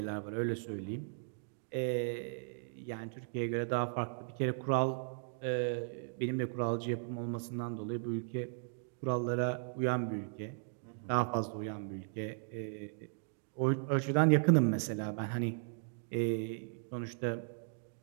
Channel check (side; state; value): left; silent; digital silence